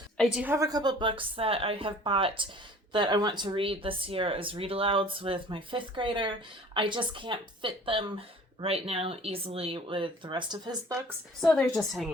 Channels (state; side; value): normal; both; correlation 0.48